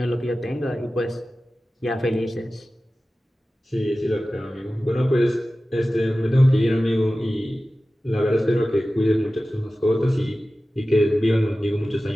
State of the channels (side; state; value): both; normal; correlation 0.95